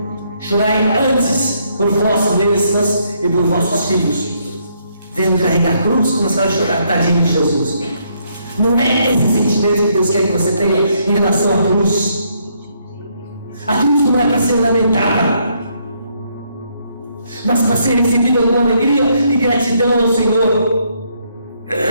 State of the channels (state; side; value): inverted; both; correlation -0.72